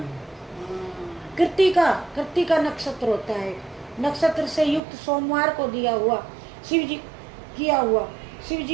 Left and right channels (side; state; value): left; drops out; at 4.8 s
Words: कृत्तिका नक्षत्र होता है, नक्षत्र से युक्त सोमवार को किया हुआ शिव